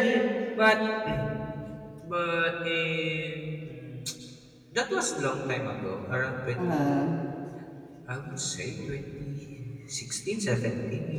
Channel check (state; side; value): identical; both; correlation 1.00